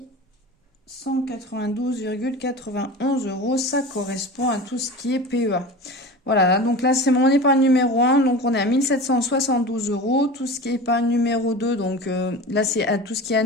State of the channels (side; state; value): both; normal; correlation 0.33